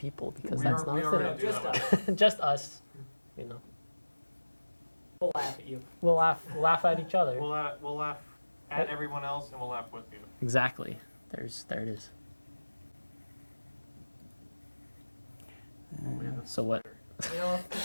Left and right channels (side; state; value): both; inverted; correlation -1.00